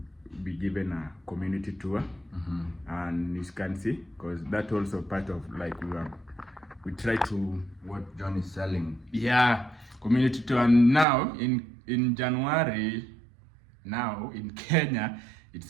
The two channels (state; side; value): drops out; left; at 11.1 s